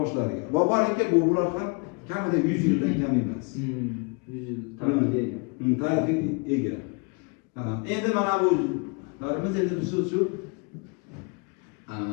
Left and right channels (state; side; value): quieter; right; 32.6 dB